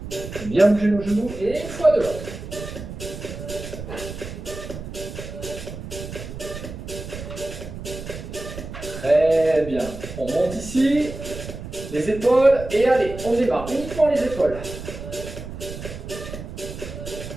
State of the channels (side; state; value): right; noise; rumble, 10 dB below the sound